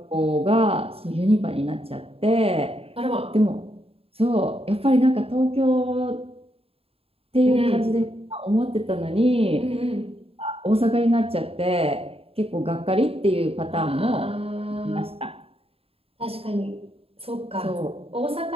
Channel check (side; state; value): left; late; 0.28 ms